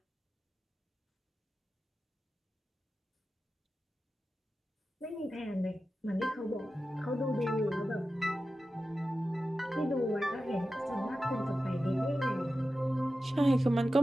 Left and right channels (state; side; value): normal; both; correlation 0.93